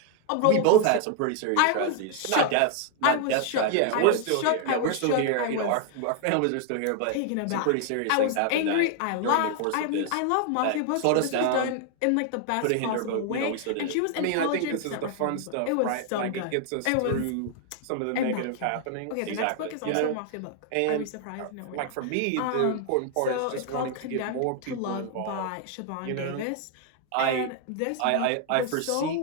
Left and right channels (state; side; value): different; both; correlation 0.00